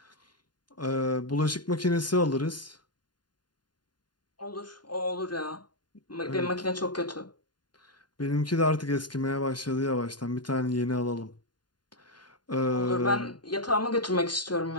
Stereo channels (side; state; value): right; late; 0.71 ms